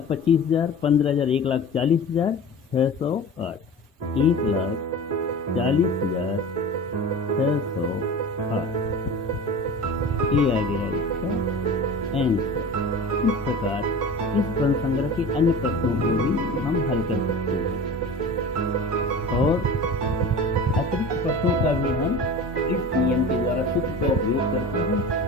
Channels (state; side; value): normal; both; correlation 0.35